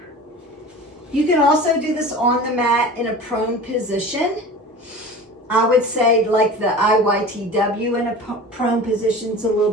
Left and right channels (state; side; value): normal; both; correlation 0.37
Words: You can also do this on the mat in a prone position. I would say like the IYTW in a prone position is a little